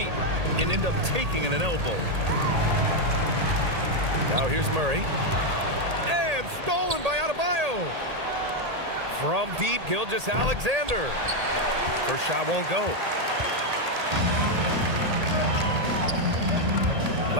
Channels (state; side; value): late; left; 1.8 ms